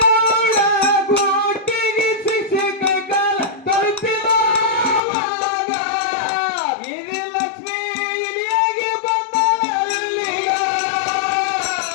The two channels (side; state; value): right; drops out; at 5.0 s